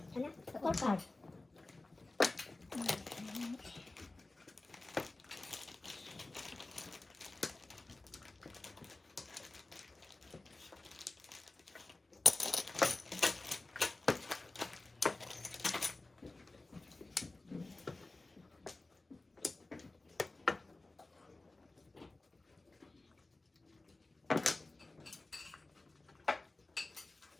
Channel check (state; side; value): quieter; right; 3.1 dB